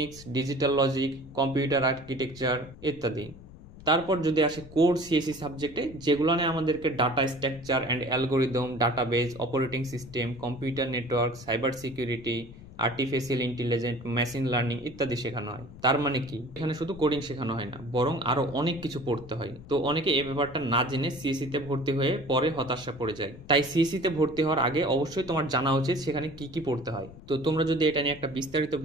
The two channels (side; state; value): left; noise; rumble, 18 dB below the sound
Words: ডিজিটাল লজিক, কম্পিউটার আর্কিটেকচার ইত্যাদি। তারপর যদি আসে কোর সিএসসি সাবজেক্টে, যেগুলো নিয়ে আমাদেরকে data structure and algorithm, database, operating system, computer network, cyber security, artificial intelligence, machine learning ইত্যাদি শেখানো হয়। তার মানে কি এখানে শুধু কোডিং শেখানো হয় না, বরং আরো অনেক কিছু পড়তে হয়। তো অনেকে এই ব্যাপারটা না জেনে সিএসসি তে ভর্তি হয়ে পরে হতাশা পড়ে যায়। তাই সিএসসি তে ভর্তি হওয়ার আগে অবশ্যই তোমার জানা উচিত সেখানে কি কি পড়তে হয়। তো তোমরা যদি এটা নিয়ে একটা বিস্তারিত